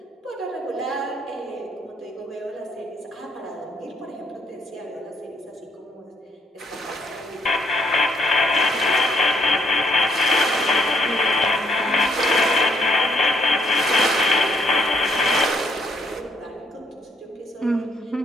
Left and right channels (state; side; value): normal; both; correlation 0.69